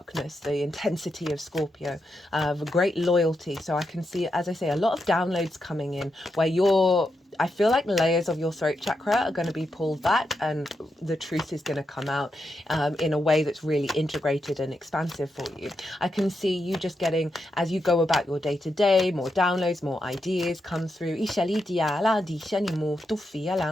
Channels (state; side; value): normal; both; correlation 0.85